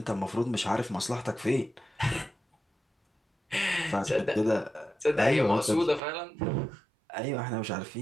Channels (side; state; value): left; drops out; at 6.0 s